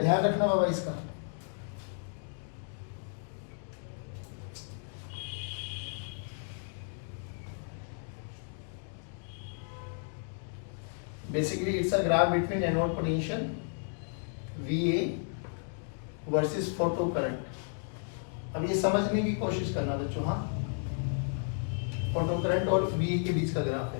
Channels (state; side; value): silent; right; 56 dB below the other